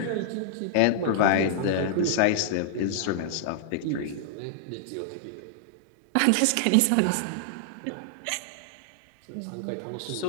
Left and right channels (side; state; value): both; different; correlation -0.01